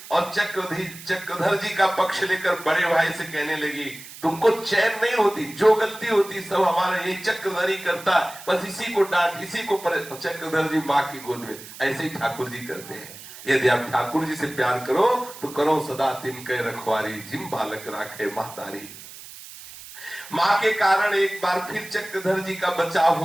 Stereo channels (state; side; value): noise; right; hiss, 16 dB below the sound